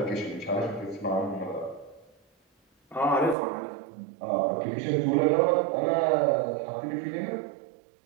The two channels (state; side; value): drops out; left; at 3.4 s